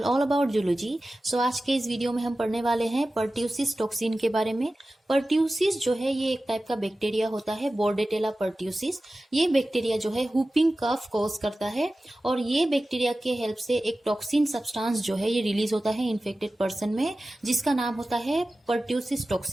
all about zoology. So आज के इस video में हम पढ़ने वाले हैं पर्ट्यूसिस टॉक्सिन के बारे में। पर्ट्यूसिस जो है ये एक टाइप का बैक्टीरिया होता है, बोर्डेटेला पर्ट्यूसिस। ये बैक्टीरिया जो है हुपिंग कफ कॉज करता है और ये बैक्टीरिया के हेल्प से एक टॉक्सिन सब्सटेंस जो है ये रिलीज होता है इन्फेक्टेड पर्सन में, जिसका नाम होता है पर्ट्यूसिस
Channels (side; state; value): both; normal; correlation 0.95